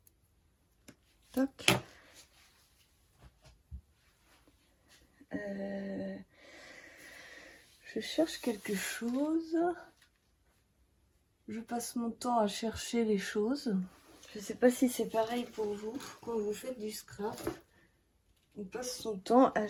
Toc. Je cherche quelque chose. Je passe mon temps à chercher les choses. Je ne sais pas si c'est pareil pour vous. Quand vous faites du scrap, on passe son temps à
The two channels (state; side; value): identical; both; correlation 1.00